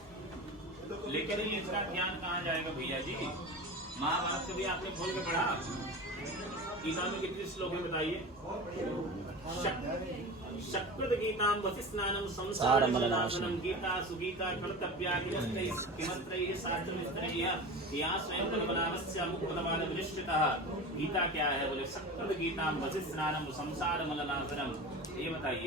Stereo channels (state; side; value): normal; both; correlation 0.30